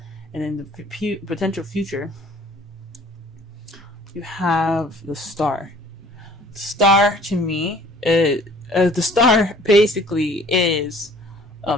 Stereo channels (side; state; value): both; normal; correlation 0.54